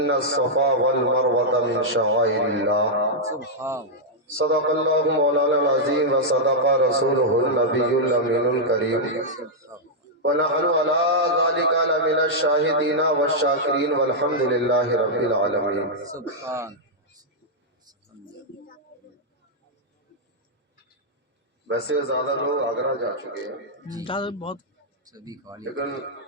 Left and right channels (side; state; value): both; normal; correlation -0.06